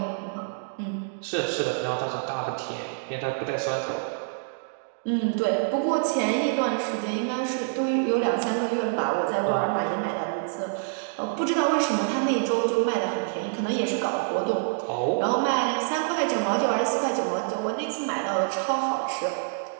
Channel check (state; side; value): silent; left; digital silence